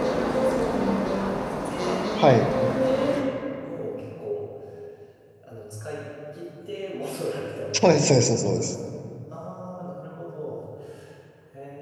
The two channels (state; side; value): identical; both; correlation 1.00